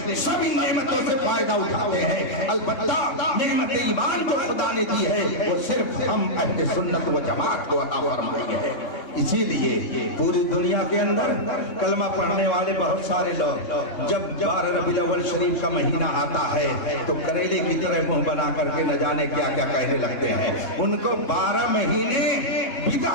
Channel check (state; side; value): late; right; 3.6 ms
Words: سب ان نعمتوں سے فائدہ اٹھاتے ہیں. البتہ نعمت ایمان جو خدا نے دی ہے وہ صرف ہم اہل سنت و جماعت کو عطا فرمائی ہے. اسی لیے پوری دنیا کے اندر کلمہ پڑھنے والے بہت سارے لوگ جب 12 ربیع الاول شریف کا مہینہ آتا ہے تو کریلے کی طرح منہ بنا کر کے نہ جانے کیا کیا کہنے لگتے ہیں. ان کو 12 مہینے